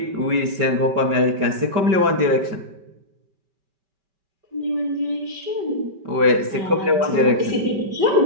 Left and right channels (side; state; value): left; late; 5.2 ms